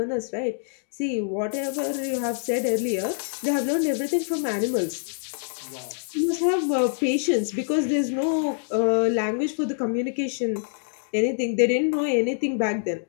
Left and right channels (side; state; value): right; silent; digital silence